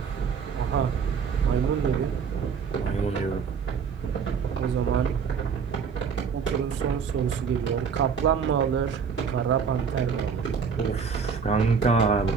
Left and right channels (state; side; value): quieter; left; 6.2 dB